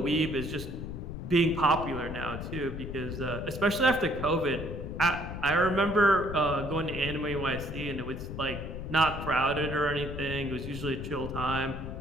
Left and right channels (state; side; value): noise; left; rumble, 7 dB below the sound